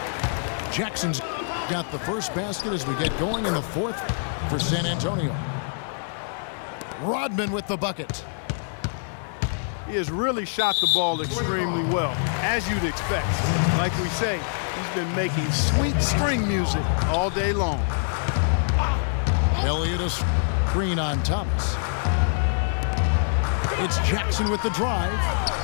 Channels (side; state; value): right; silent; digital silence